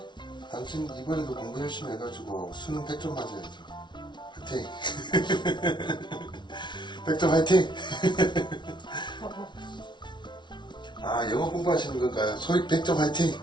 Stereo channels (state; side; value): late; right; 0.22 ms